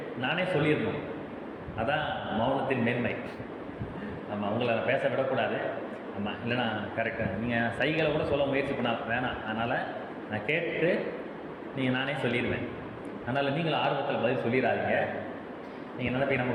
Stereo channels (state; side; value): identical; both; correlation 1.00